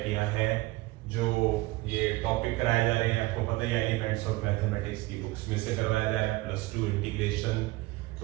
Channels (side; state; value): left; quieter; 20.4 dB